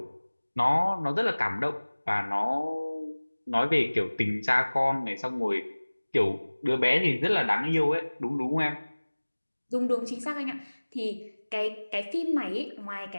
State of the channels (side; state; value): both; inverted; correlation -1.00